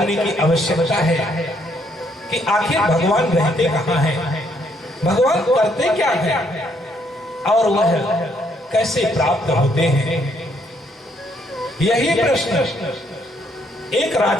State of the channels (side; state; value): both; normal; correlation 0.70